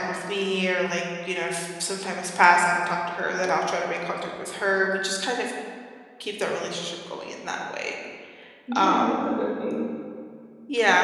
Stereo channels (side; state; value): both; identical; correlation 1.00